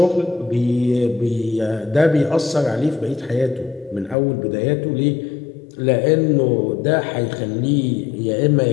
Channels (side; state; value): right; drops out; at 4.2 s